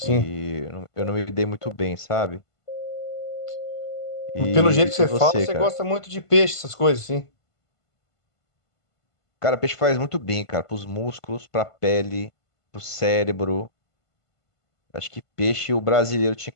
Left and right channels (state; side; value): late; right; 1.5 ms